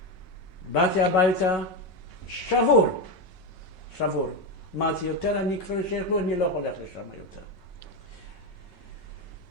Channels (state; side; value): late; right; 5.3 ms